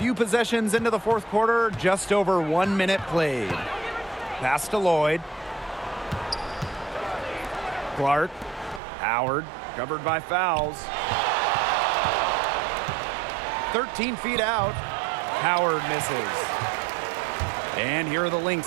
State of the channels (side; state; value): left; drops out; at 8.8 s